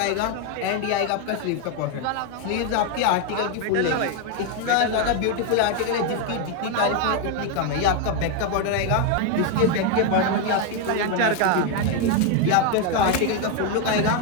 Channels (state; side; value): different; both; correlation 0.01